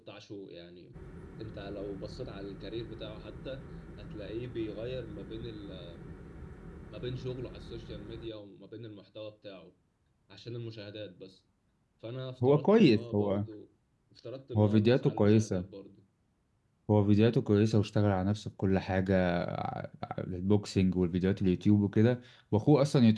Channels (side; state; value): both; identical; correlation 1.00